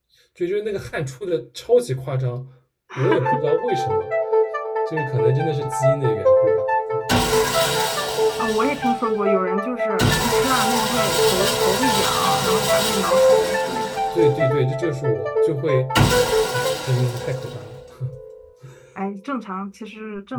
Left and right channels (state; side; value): identical; both; correlation 1.00